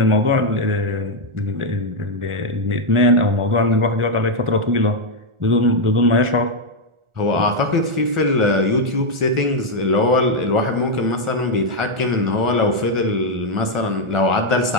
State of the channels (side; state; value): left; late; 1.4 ms